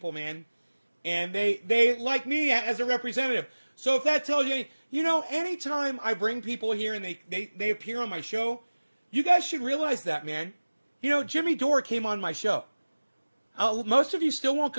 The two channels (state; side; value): inverted; both; correlation -1.00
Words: man. And they like me as a representative. So if that tells you, you know, anytime I bring people here and they appear on my show, you guys should realize that, man. You know, Jimmy Dore came on my show. Most of you still won't